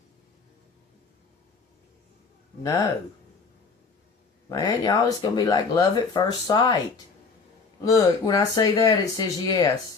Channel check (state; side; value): quieter; right; 4.7 dB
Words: No. Man, y'all, it's going to be like love at first sight. Look, when I say that, it says